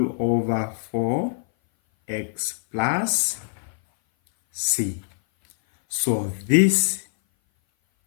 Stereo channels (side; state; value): right; silent; 58 dB below the other